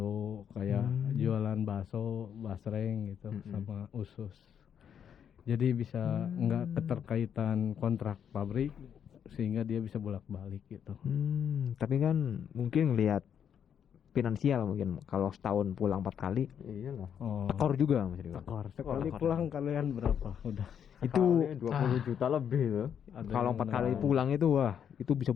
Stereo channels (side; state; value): right; quieter; 8.4 dB